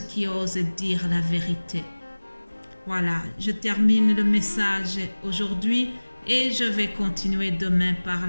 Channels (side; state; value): both; inverted; correlation -1.00